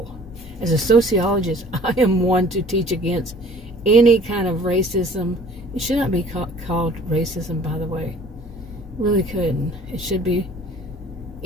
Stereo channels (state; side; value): normal; both; correlation 0.51